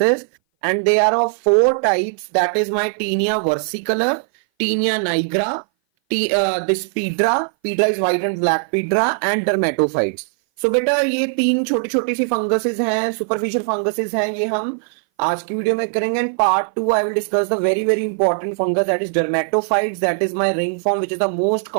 And they are of 4 types, that is my tinea versicolor, tinea nigra, this piedra, piedra is white and black piedra, and dermatophytes. So बेटा ये 3 छोटी छोटी सी funguses हैं, सुपरफिशियल फंगसेस हैं, ये हम आज की वीडियो में करेंगे। And part 2 I will discuss the very very important fungus, that is dermatophytes, that is my ring form which is the most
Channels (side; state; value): left; silent; 59 dB below the other